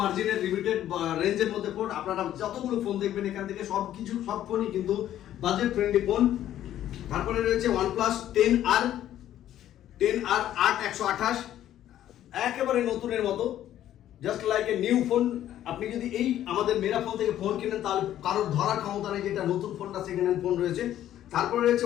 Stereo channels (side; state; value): right; quieter; 12.0 dB